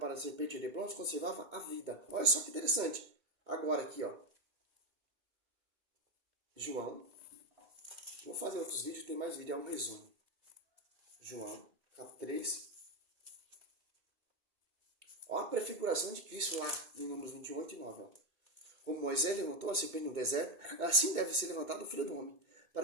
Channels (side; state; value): left; late; 2.1 ms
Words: a serpente de bronze, conservava a vida. Olha só que interessante. Agora aqui, ó. João. Vou fazer outros vídeos, tem mais vídeo, é um resumo. João, capítulo 3. Olha a prefiguração de Cristo lá, em Números 21:8-9. Como Moisés levantou a serpente no deserto, assim deve ser levantado o Filho do Homem,